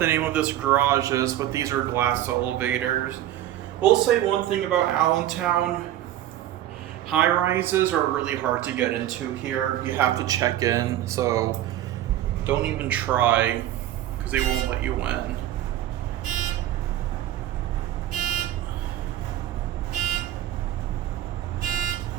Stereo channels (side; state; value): left; quieter; 12.8 dB